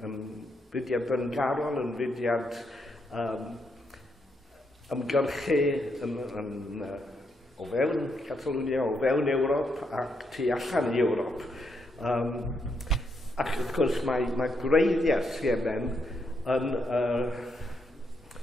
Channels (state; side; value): normal; both; correlation 0.79